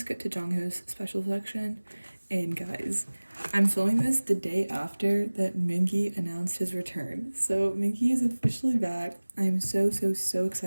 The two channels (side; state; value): both; inverted; correlation -1.00